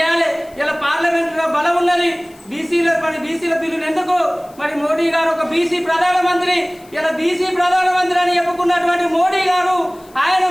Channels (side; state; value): left; noise; hiss, 27 dB below the sound